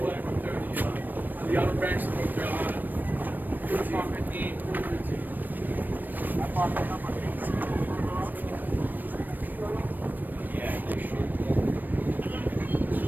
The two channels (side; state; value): left; late; 0.090 ms